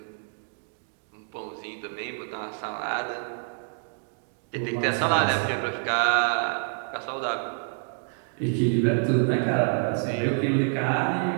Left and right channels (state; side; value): silent; left; digital silence